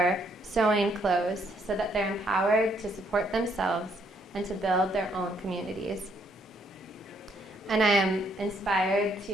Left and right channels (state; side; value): normal; both; correlation 0.70